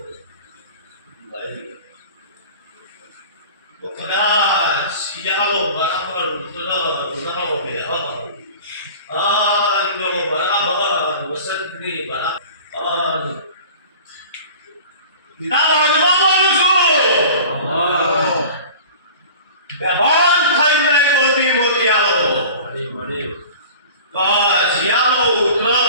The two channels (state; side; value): inverted; both; correlation -0.41